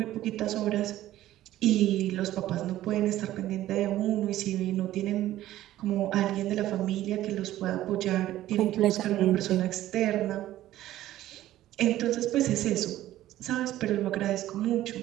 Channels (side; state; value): left; quieter; 14.1 dB